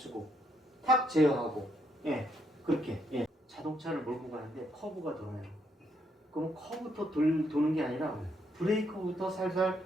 탁 제어하고 그렇게 자동차를 몰고 가는데 커브가 돌아요. 그럼 커브부터 도는 게 아니라 브레이크부터 살살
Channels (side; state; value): both; normal; correlation 0.74